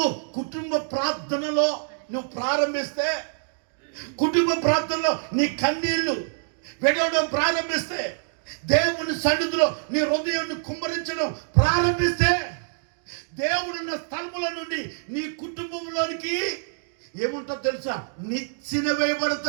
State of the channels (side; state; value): left; silent; digital silence